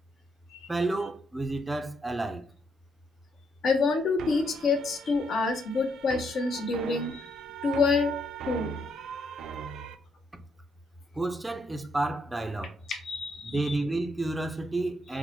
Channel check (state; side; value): normal; both; correlation 0.75